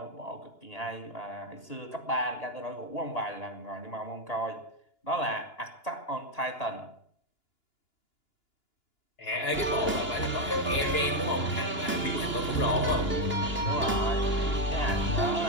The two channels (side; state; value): right; late; 2.9 ms